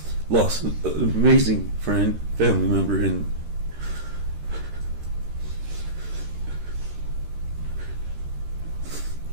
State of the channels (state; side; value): late; left; 13 ms